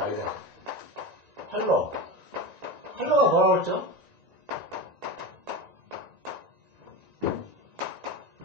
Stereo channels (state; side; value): late; left; 1.9 ms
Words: 이래. 팔로. 팔로가 뭐라고 했죠?